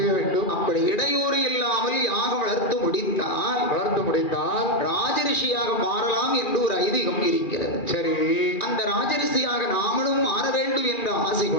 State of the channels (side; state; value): right; late; 2.4 ms